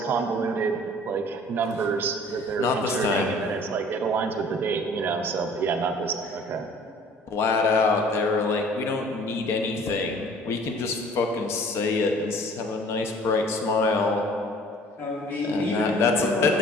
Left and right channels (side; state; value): both; normal; correlation 0.51